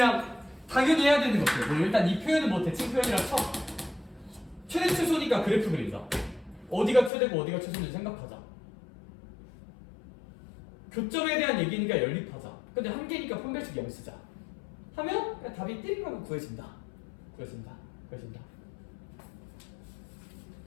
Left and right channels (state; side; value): drops out; right; at 7.1 s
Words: 당연히 해야 되는 것들. 뭐 일단 이 표현은 뭐 대칭 표현이라 쳐. 최대 최소니까 그래프 그린다. 어디가 최대고 어디가 최소인지 생각하자. 교점에 대한 얘기니까 연립하자. 근데 한 개니까 판별식 0 쓰자. 하면 그냥 답이 띠링하고 구해진다. 구해진다.